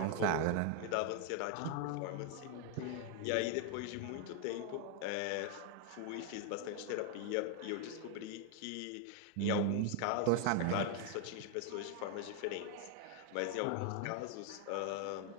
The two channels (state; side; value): different; both; correlation 0.00